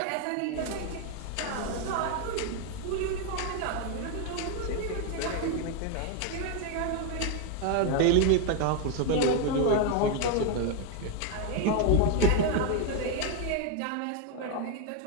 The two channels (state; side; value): different; both; correlation 0.01